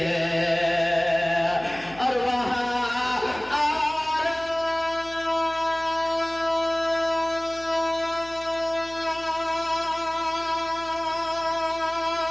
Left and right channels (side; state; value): left; noise; hum, 21 dB below the sound